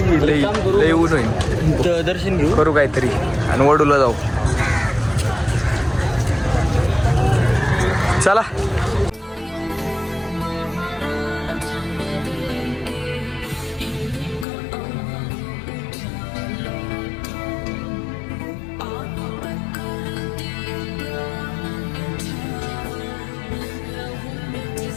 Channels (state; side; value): drops out; right; at 14.5 s